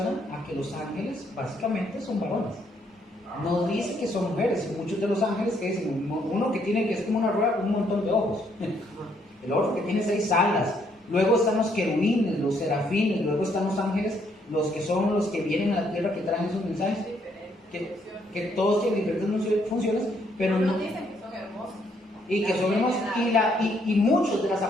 a que los ángeles básicamente son varones. No dice que son mujeres. Y muchos de los ángeles que dicen, uno que tiene, que es como una rueda con un montón de ojos. El otro que tiene 6 alas. Luego están los querubines, los serafines. Luego están los ángeles, los que son los que vienen a la tierra, que traen esos mensajes. Que todos tienen diferentes funciones, pero no dicen que son hermosos. Y que son hermosos. Y muchas de las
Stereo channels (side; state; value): both; normal; correlation 0.70